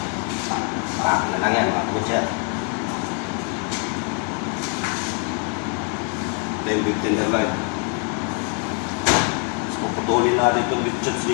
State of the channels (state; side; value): quieter; right; 39.5 dB